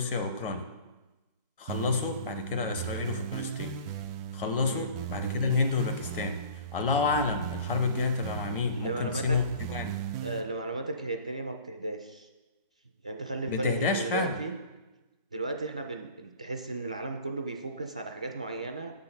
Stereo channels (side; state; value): both; inverted; correlation -0.44